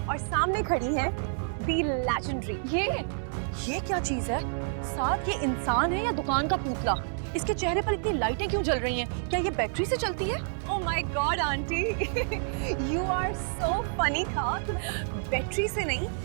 और सामने खड़ी है दी लेजेंडरी। ये क्या चीज है? साथ ये इंसान है या दुकान का पुतला? इसके चेहरे पर इतनी लाइटें क्यों जल रही हैं? क्या ये बैटरी से चलती है? Oh my god aunty, you are so funny. था बैटरी से नहीं,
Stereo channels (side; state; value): left; silent; 57 dB below the other